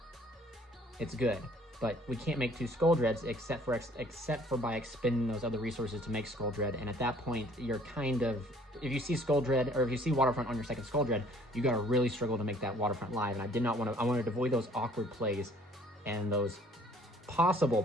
it's good. But we can't make 2 Skull Dreads except for by expending those other resources to make Skull Dread. And at that point, you're kind of, if you see Skull Dread, or if you see Waterfront on your second Skull Dread, you gotta really struggle to make that Waterfront live. And I wanted to avoid those awkward plays and those possible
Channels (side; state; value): both; normal; correlation 0.57